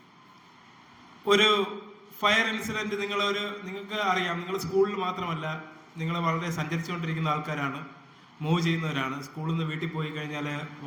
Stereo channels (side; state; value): both; identical; correlation 1.00